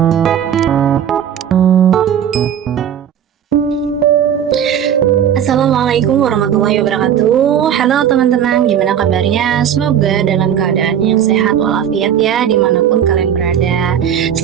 warahmatullahi wabarakatuh. Halo teman-teman, gimana kabarnya? Semoga dalam keadaan yang sehat walafiat ya, dimanapun kalian berada.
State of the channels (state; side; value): quieter; left; 9.3 dB